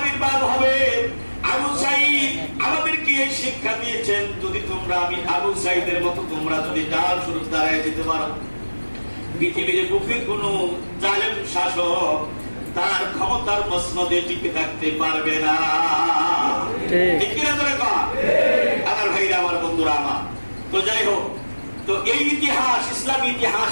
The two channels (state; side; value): inverted; both; correlation -1.00